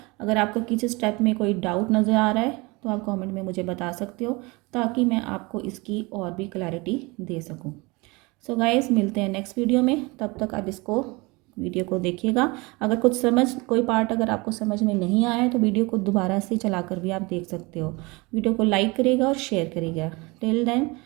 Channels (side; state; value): left; quieter; 25.5 dB